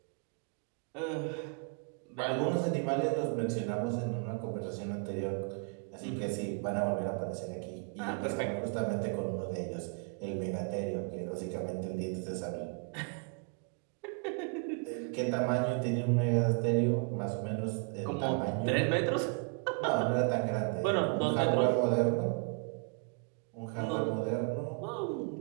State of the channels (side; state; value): left; quieter; 36.0 dB